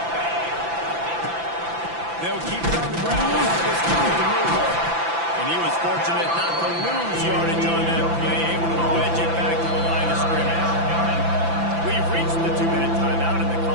They'll keep it on the ground. And he was fortunate not to lose yardage on that play, able to wedge it back to the line of scrimmage. We've reached the 2-minute timeout, and the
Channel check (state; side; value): late; left; 5.9 ms